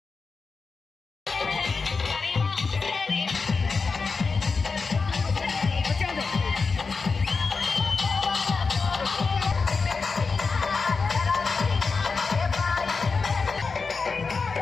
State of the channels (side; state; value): right; quieter; 4.6 dB